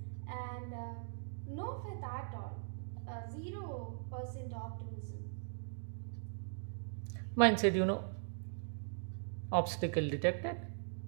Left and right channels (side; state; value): left; silent; digital silence